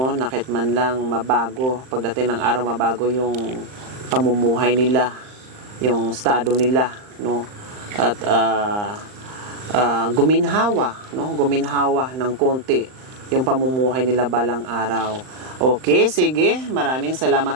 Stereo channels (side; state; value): left; late; 39 ms